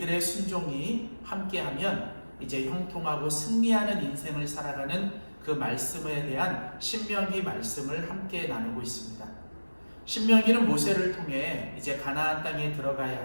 순종이 함께하면 이제 형통하고 승리하는 인생을 살아가는 그 말씀에 대한 신명기 말씀을 함께 나누고 있습니다. 신명기는 모세를 통해 이제 가나안 땅에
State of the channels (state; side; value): inverted; both; correlation -1.00